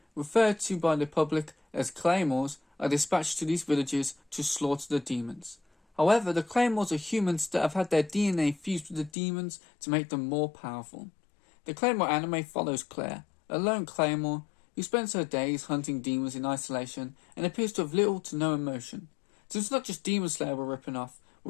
referred to by the public as Claymores, are dispatched to these villages to slaughter the demons. However, the Claymores are humans that have had their DNA fused with the demons to make them more powerful. The Claymore anime follows Claire, a lone Claymore who spends her days hunting demons in isolation and appears to have little to no emotion. So it's not just Demon Slayer we're ripping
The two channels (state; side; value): drops out; right; at 9.1 s